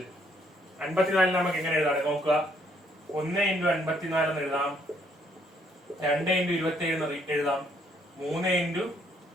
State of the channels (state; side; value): normal; both; correlation 0.68